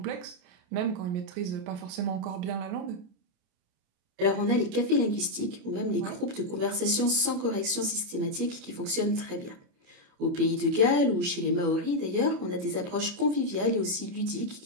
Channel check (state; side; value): late; left; 28 ms